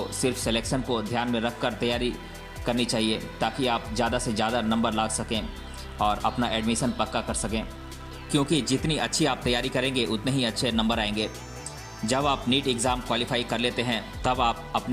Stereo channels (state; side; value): identical; both; correlation 1.00